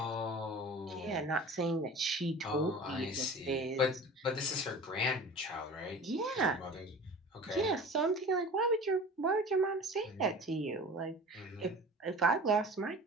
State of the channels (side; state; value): both; normal; correlation 0.39